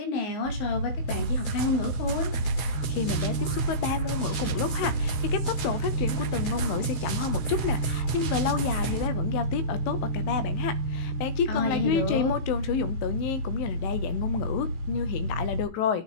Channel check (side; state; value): right; late; 16 ms